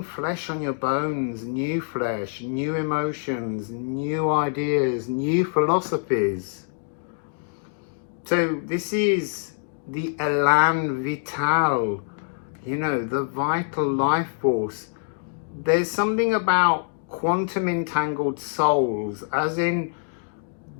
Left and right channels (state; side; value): silent; right; digital silence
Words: flesh on your bones, new flesh, new emotions, new ideas, new philosophies. So this is the élan vital, you know, the vital life force. There's something about quantum entangled souls, as in